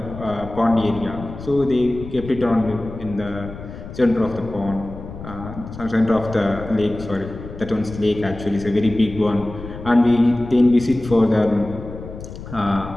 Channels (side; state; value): left; noise; rumble, 12 dB below the sound